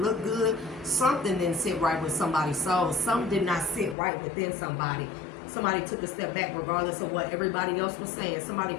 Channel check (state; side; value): drops out; right; at 4.0 s